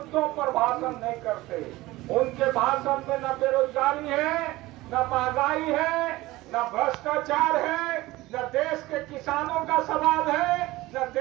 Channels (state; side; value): quieter; left; 18.8 dB